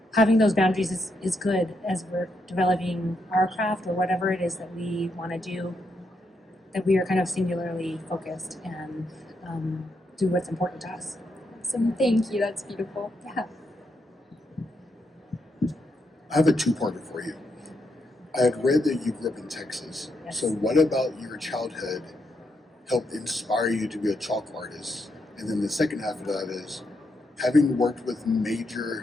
having those boundaries is good as we're developing our craft or whatever it is that we want to do, that we are kind of singularly focused and do what's important to us. Awesome. Thank you. That's beautiful. Yeah. I have a two-parter for you. I had read that you grew up in Texas. Yes. So what about your childhood helped inspire you to be a chalk artist? And then the second half of that is, having worked with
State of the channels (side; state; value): both; normal; correlation 0.80